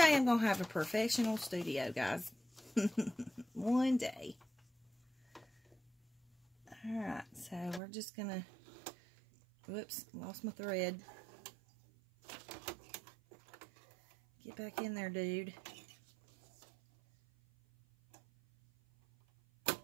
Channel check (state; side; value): drops out; left; at 7.8 s